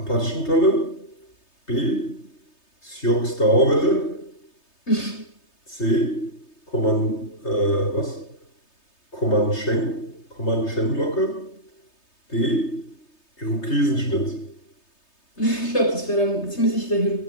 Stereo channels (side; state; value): right; late; 3.3 ms